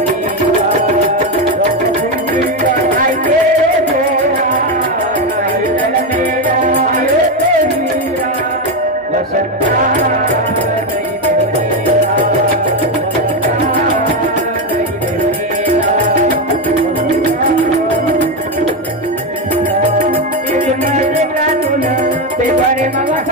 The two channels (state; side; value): normal; both; correlation 0.10